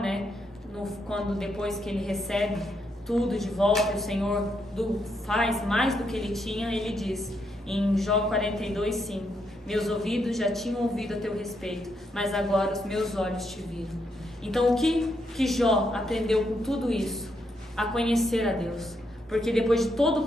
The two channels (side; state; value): both; normal; correlation 0.79